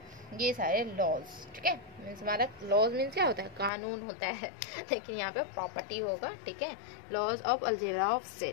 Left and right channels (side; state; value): right; drops out; at 3.7 s